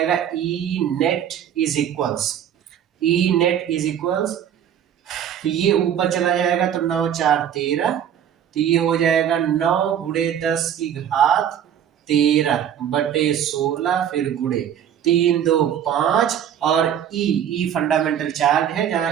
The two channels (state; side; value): quieter; left; 9.5 dB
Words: E नेट इज इक्वल्स, तो ये ऊपर चला जाएगा तो 9 × 4 = 13, तो ये हो जाएगा 9 × 10⁻13 बटे 16, फिर गुणे 3 2 5, और E फंडामेंटल चार्ज है